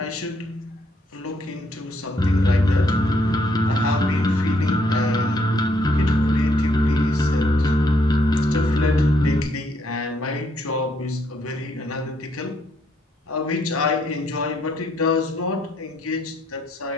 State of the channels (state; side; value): normal; both; correlation 0.71